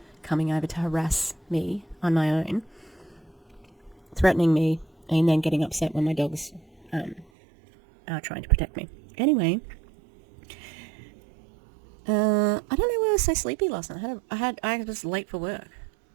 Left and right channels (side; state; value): left; drops out; at 7.2 s